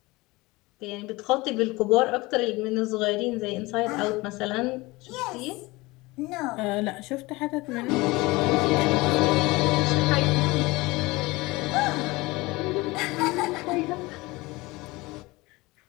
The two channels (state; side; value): quieter; right; 22.2 dB